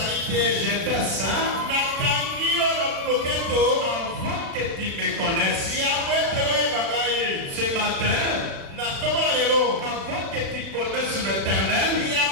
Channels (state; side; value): late; left; 36 ms